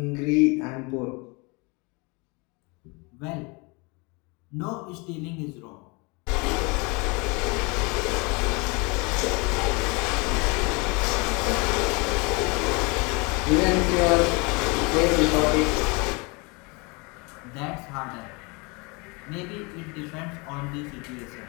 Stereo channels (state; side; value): quieter; right; 28.9 dB